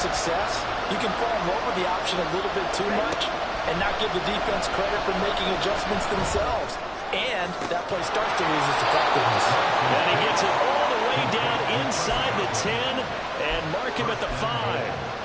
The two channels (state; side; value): identical; both; correlation 1.00